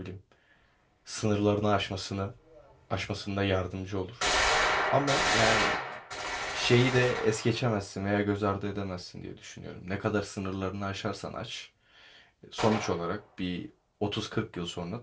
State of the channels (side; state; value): both; identical; correlation 1.00